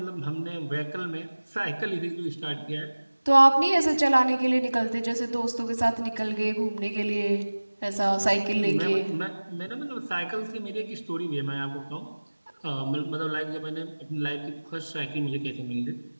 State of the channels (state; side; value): inverted; both; correlation -1.00